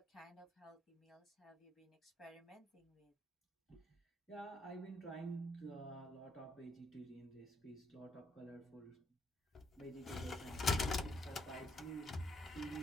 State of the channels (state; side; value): normal; both; correlation 0.74